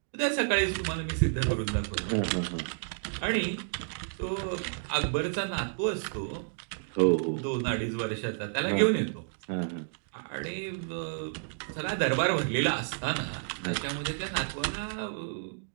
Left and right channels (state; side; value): silent; left; digital silence